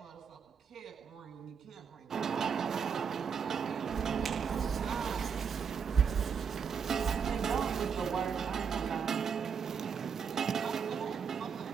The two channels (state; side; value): quieter; left; 6.5 dB